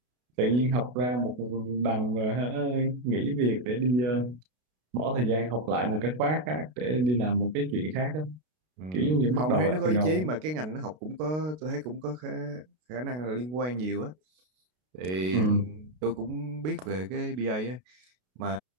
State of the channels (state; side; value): late; left; 32 ms